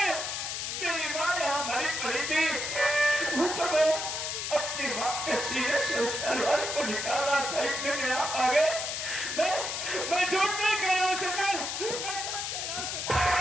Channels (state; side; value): noise; left; hiss, 3 dB below the sound